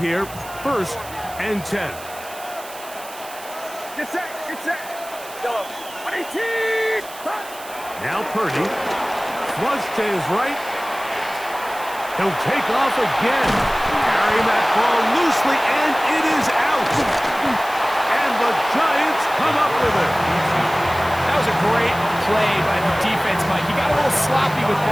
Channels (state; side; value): noise; right; hiss, 16 dB below the sound